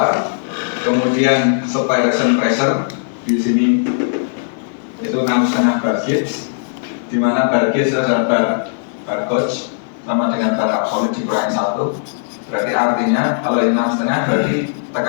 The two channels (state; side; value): silent; right; digital silence